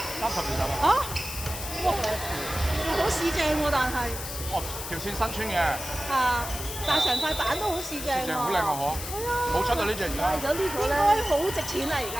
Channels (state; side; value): noise; left; hiss, 8 dB below the sound